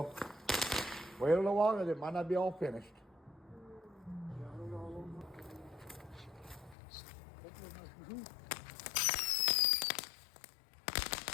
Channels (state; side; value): drops out; right; at 6.8 s